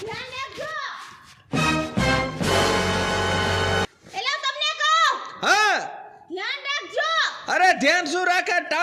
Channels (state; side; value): identical; both; correlation 1.00